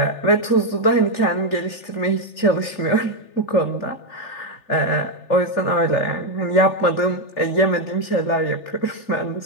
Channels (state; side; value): late; right; 3.4 ms